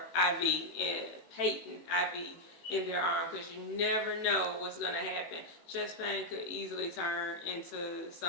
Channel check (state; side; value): late; right; 18 ms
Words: IV, and patent IV in their arm, because you never know what's going to happen. Chest pain could easily turn into